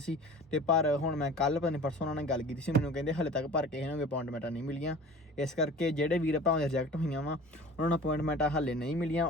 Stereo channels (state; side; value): normal; both; correlation 0.42